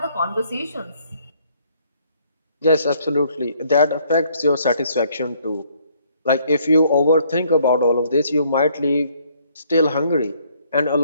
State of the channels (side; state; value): both; inverted; correlation -0.66